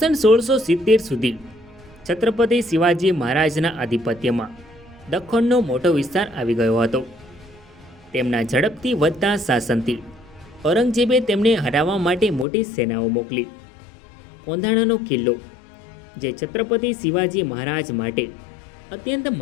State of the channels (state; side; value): drops out; right; at 12.5 s